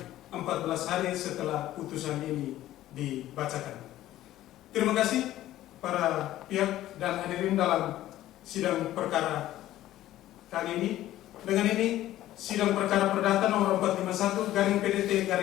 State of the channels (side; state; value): right; quieter; 14.2 dB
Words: 14 hari setelah putusan ini dibacakan. Terima kasih para pihak dan hadirin dalam sidang perkara kali ini. Dengan ini Sidang perkara perdata nomor 451 garing PDT